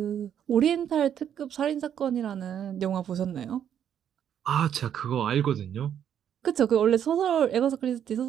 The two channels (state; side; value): quieter; left; 9.3 dB